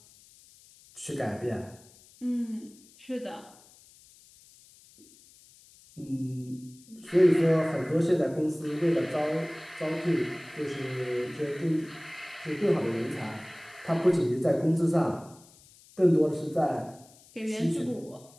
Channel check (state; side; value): noise; left; hiss, 25 dB below the sound